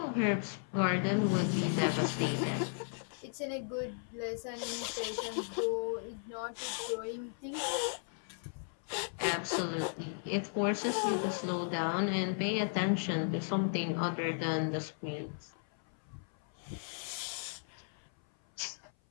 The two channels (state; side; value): silent; right; 54 dB below the other